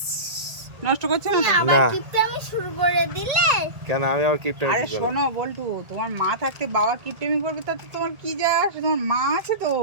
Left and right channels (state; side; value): late; left; 1.8 ms